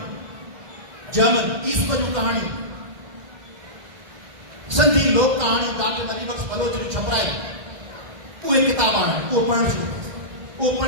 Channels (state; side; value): late; left; 2.1 ms